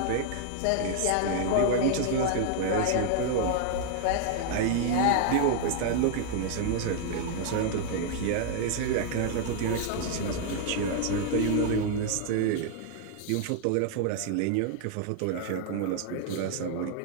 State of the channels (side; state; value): both; different; correlation 0.00